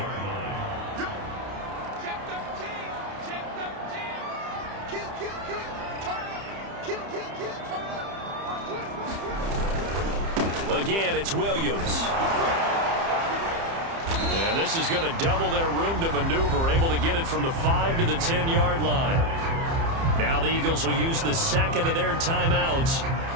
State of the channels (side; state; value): left; late; 30 ms